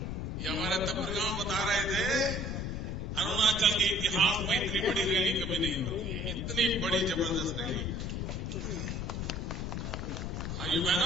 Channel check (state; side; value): noise; left; rumble, 3 dB below the sound